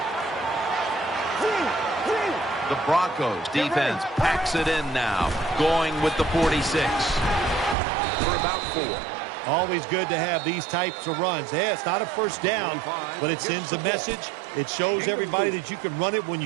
The Broncos defense packs it in now, going with the 46 for about 4. Always good to have these types of runs. Yeah, it's not a first down, but it sends a message. It shows everybody that you can run it when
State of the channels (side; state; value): left; drops out; at 7.8 s